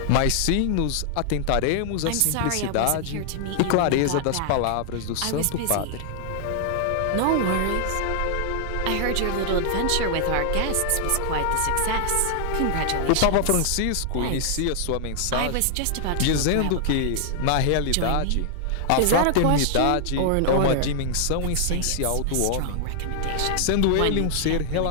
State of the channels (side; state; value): both; different; correlation 0.00